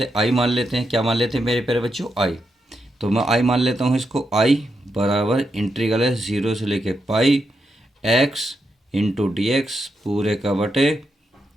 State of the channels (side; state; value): both; normal; correlation 0.84